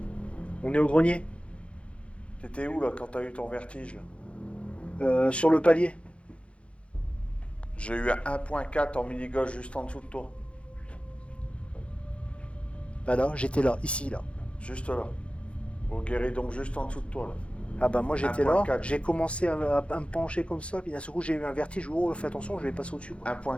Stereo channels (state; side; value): late; right; 0.060 ms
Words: On est au grenier. t'étais où là quand t'as eu ton vertige là? Sur le palier. J'ai eu un 1.4 en mini-gauche juste en dessous de toi. Bah là, j'étais là, ici, là. Juste là. Au guéridon, juste en dessous de toi, là. Ah bah moi j'étais là, 1.4. j'ai commencé à me pencher comme ça, puis d'un seul coup j'ai eu un vertige, oh fais attention, je vais passer au-dessus. Quoi.